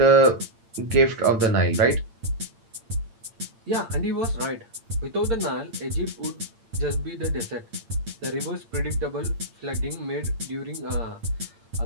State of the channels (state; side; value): late; left; 8.8 ms